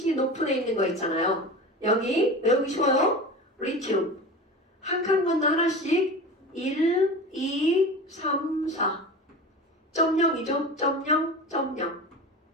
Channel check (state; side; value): normal; both; correlation 0.31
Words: 높은 애 있는 거 있잖아요. 여기 외우기 쉬워요. 리튬. 한 칸 건너 하나씩 1, 2, 3, 4. 0.0이죠? 0.0.